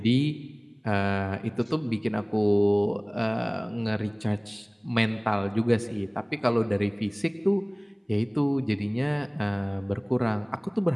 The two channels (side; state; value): both; identical; correlation 1.00